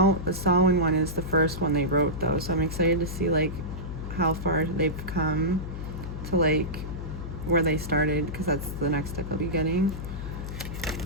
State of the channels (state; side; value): noise; left; hum, 7 dB below the sound